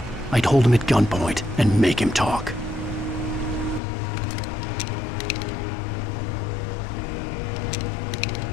I'd hold him at gunpoint and make him talk.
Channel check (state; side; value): drops out; right; at 3.8 s